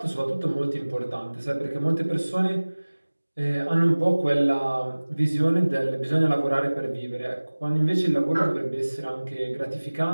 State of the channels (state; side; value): inverted; both; correlation -1.00